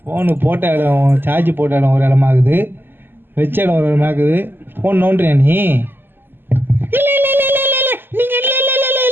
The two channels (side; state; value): left; late; 0.098 ms